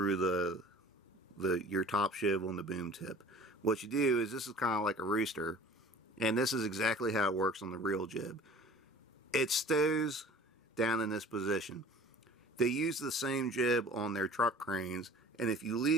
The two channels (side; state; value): both; normal; correlation 0.46